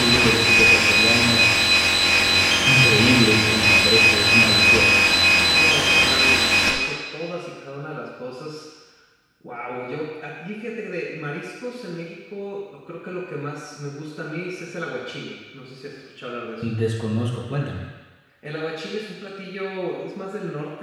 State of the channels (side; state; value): both; identical; correlation 1.00